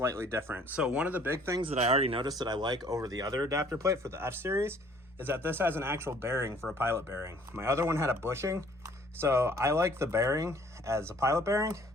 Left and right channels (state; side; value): normal; both; correlation 0.57